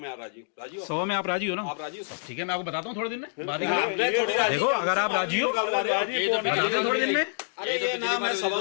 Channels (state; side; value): silent; right; digital silence